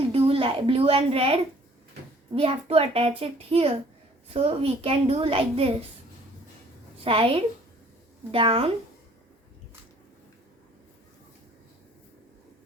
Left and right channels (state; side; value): normal; both; correlation 0.56